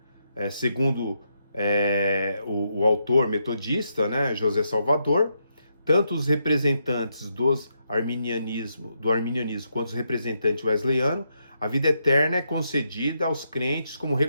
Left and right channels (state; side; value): inverted; both; correlation -0.80